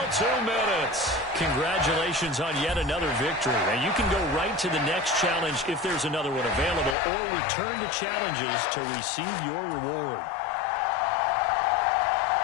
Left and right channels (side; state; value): right; drops out; at 7.0 s